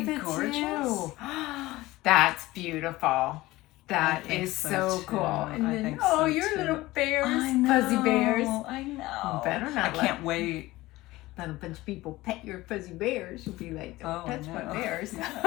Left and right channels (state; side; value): quieter; right; 18.7 dB